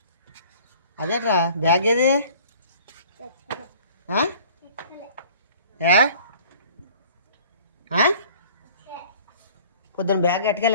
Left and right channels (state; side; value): inverted; both; correlation -0.50